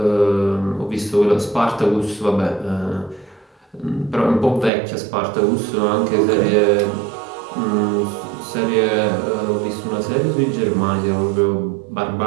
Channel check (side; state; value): left; drops out; at 4.7 s